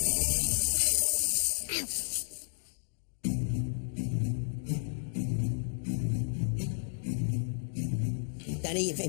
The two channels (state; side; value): silent; right; digital silence